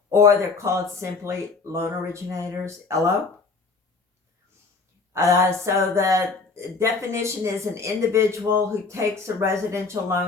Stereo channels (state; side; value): quieter; right; 4.2 dB